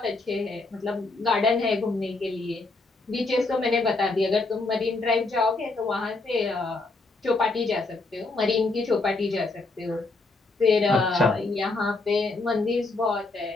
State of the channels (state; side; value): quieter; right; 3.5 dB